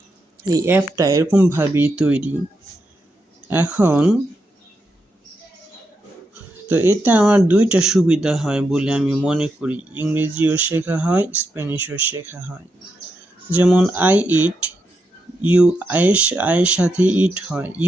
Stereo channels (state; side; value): normal; both; correlation 0.84